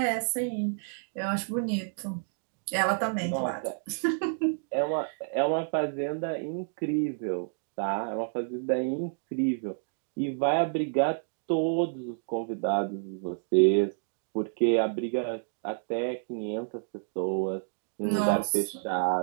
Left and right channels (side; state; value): left; silent; digital silence